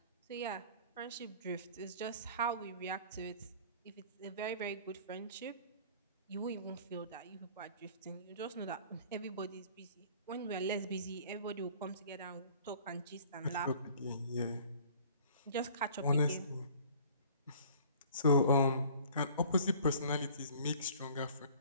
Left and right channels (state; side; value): inverted; both; correlation -0.50